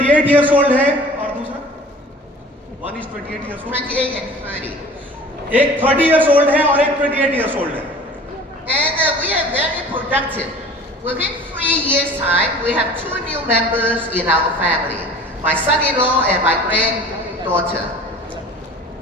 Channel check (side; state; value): both; normal; correlation 0.44